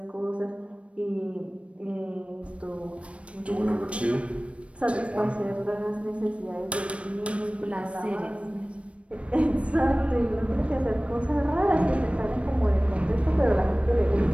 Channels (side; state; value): left; late; 0.062 ms